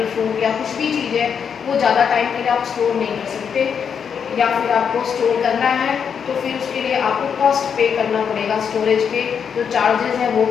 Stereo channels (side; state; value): right; quieter; 7.1 dB